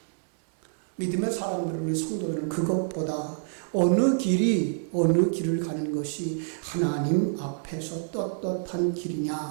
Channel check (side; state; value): left; silent; digital silence